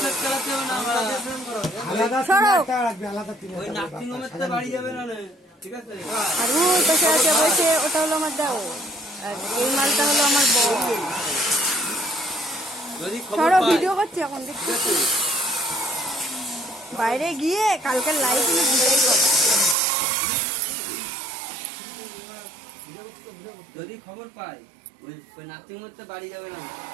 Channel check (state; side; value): drops out; left; at 19.8 s